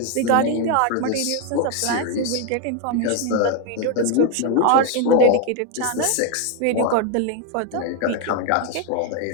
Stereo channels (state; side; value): different; both; correlation 0.01